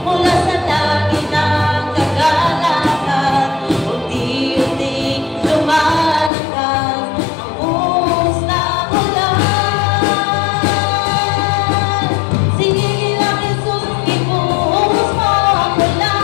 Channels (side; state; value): right; drops out; at 6.3 s